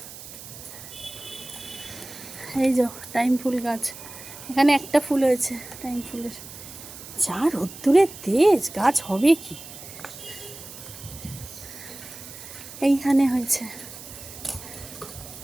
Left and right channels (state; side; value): noise; right; hiss, 14 dB below the sound